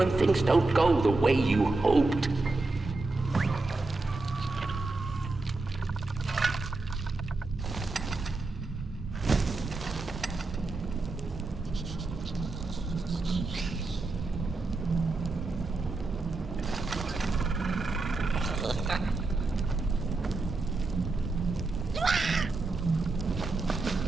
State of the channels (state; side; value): quieter; left; 3.4 dB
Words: things don't go the way you hoped.